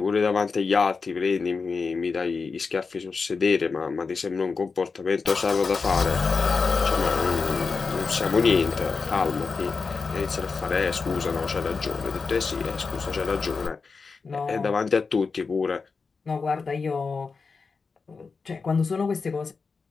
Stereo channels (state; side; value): quieter; right; 4.7 dB